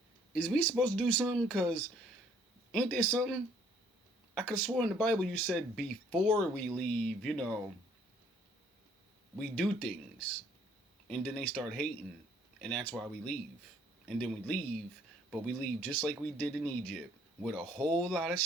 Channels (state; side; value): normal; both; correlation 0.62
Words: Is we supposed to do something? Because ain't there something? I could have sworn in the Bible you said before we leave, we do things. And then they start hating. And that's why we leave. And then we leave, but we leave just like we did in Egypt. With a whole lot of